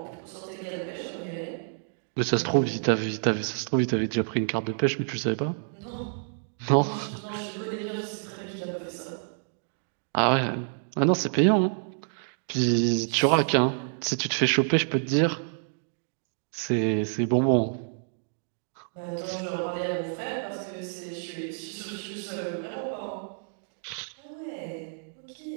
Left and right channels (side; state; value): left; silent; digital silence